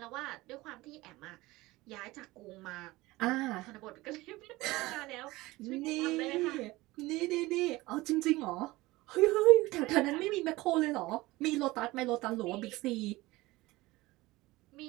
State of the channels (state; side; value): quieter; left; 19.9 dB